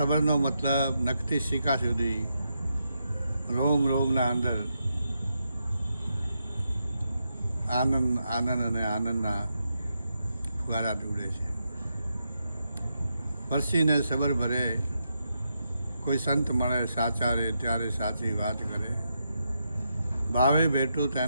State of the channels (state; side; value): inverted; both; correlation -0.83